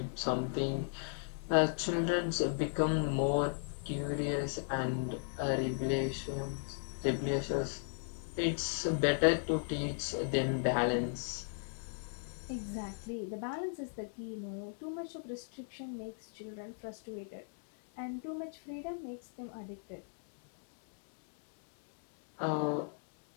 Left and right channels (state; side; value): silent; right; digital silence